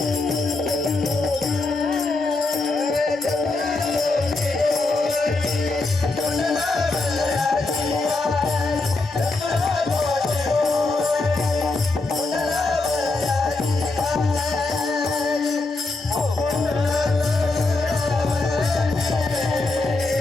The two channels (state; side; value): quieter; right; 3.4 dB